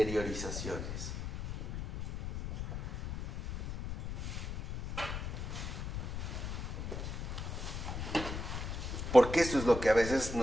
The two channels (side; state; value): left; noise; rumble, 5 dB below the sound